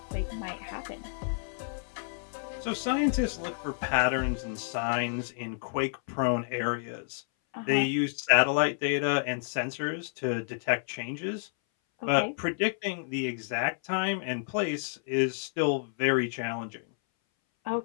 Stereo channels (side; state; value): right; silent; 58 dB below the other